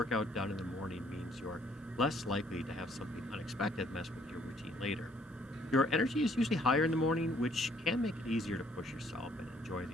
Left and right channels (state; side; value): normal; both; correlation 0.64